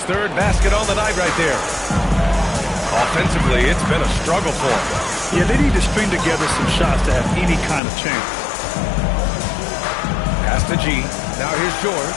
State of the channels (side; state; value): right; drops out; at 7.8 s